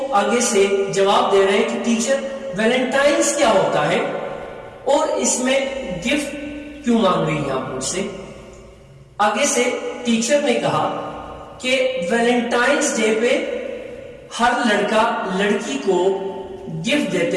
آگے سے جواب دے رہے ہیں کہ ٹیچر ویلنٹائنس کیا ہوتا ہے اور اس میں گفٹ کیوں مانگ رہی ہیں آپ مجھ سے؟ آگے سے ٹیچر نے کہا کہ ویلنٹائنس ڈے پہ ہر لڑکا لڑکی کو گفٹ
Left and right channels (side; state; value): both; identical; correlation 1.00